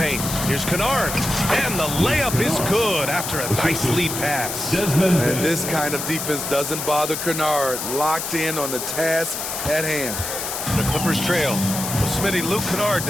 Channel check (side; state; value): left; noise; hiss, 5 dB below the sound